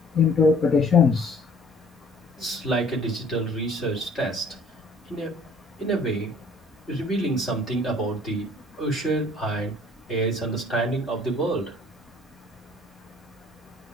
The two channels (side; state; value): both; normal; correlation 0.55